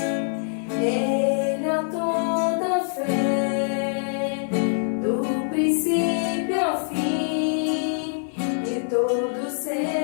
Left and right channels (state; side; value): silent; right; 62 dB below the other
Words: Ele é toda fé, do princípio ao fim, e todos os